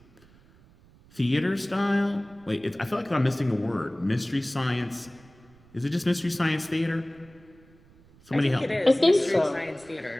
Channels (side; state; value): right; noise; rumble, 27 dB below the sound